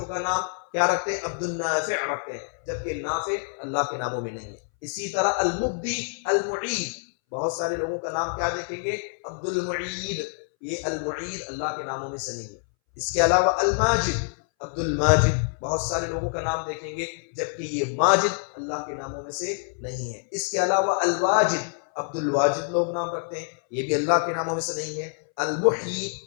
کا نام کیا رکھتے ہیں؟ عبد النافع رکھتے ہیں، جبکہ نافع اللہ کے ناموں میں نہیں ہے۔ اسی طرح المبدی، المعید، بہت سارے لوگوں کا نام کیا دیکھیں گے؟ عبد المعید، یہ المعید اللہ کے ناموں میں سے نہیں ہے۔ اس کے علاوہ الماجد، عبد الماجد، بہت سارے لوگوں کا نام دیکھیں گے جبکہ یہ ماجد اللہ کے ناموں میں سے نہیں ہے۔ اس کے علاوہ الواجد، عبد الواجد لوگ نام رکھتے ہیں، یہ بھی اللہ کے ناموں میں سے نہیں ہے۔ المحیی،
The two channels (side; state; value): right; silent; 61 dB below the other